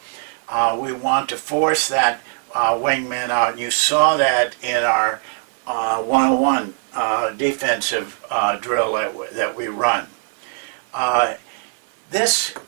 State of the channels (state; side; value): silent; left; digital silence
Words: We want to force that wingman out. And you saw that in our 101 defensive drill that we run. This,